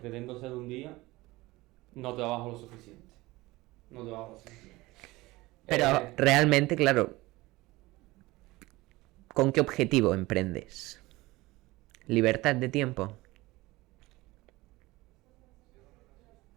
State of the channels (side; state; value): left; quieter; 20.2 dB